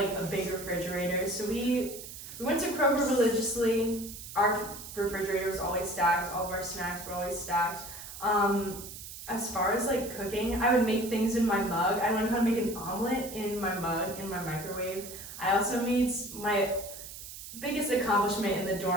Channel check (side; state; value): right; noise; hiss, 12 dB below the sound